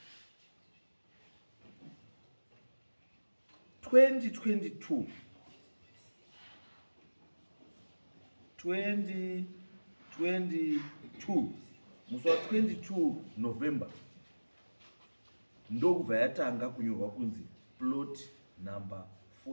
2022 musi wa 22 November ndokubva yatanga kunyorwa kunzi plot number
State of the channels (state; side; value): inverted; both; correlation -1.00